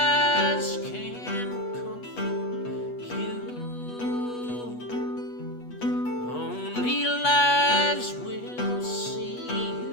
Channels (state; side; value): late; right; 8.2 ms